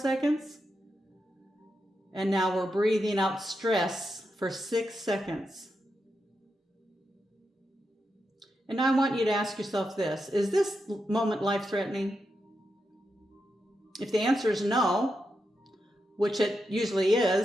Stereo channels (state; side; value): normal; both; correlation 0.86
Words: And now we're breathing out stress for 6 seconds. And I want you to ask yourself this: is this moment life-threatening? If the answer is no, which it usually